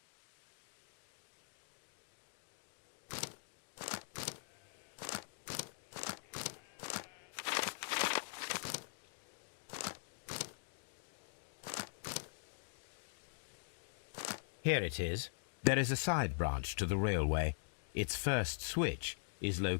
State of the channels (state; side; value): silent; right; digital silence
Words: Here it is. There is a side branch to the railway. Its first switch is